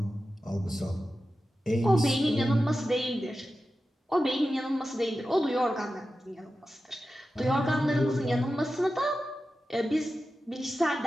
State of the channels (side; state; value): both; normal; correlation 0.93